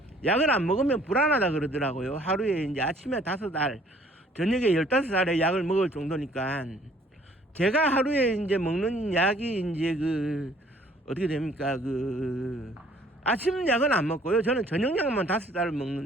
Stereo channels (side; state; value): both; normal; correlation 0.58